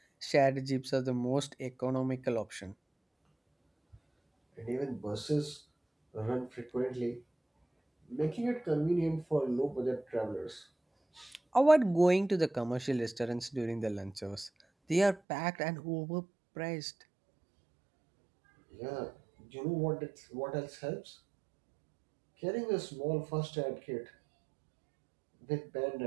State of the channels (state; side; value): drops out; left; at 15.2 s